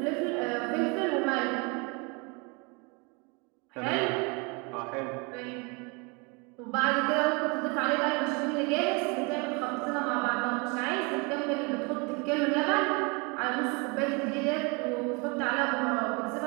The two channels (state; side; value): quieter; left; 30.5 dB